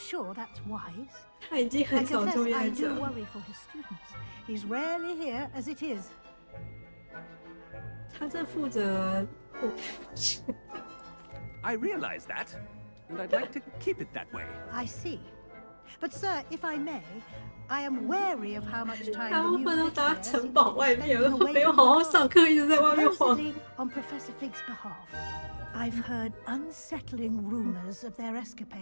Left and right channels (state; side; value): inverted; both; correlation -1.00